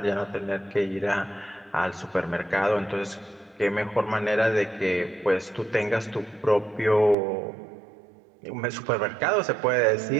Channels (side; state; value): left; drops out; at 7.2 s